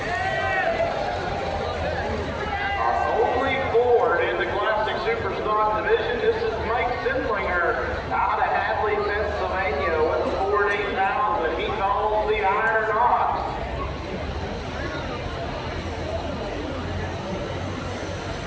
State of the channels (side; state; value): both; identical; correlation 1.00